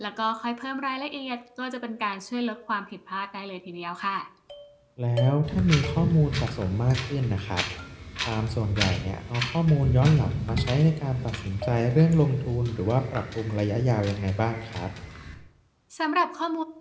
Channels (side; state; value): both; identical; correlation 1.00